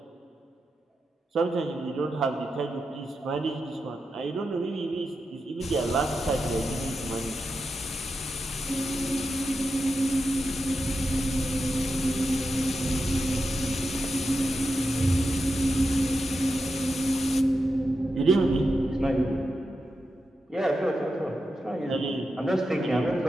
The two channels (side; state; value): both; normal; correlation 0.88